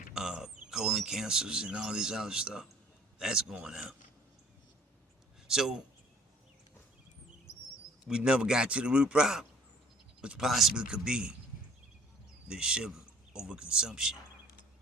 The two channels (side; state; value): both; normal; correlation 0.55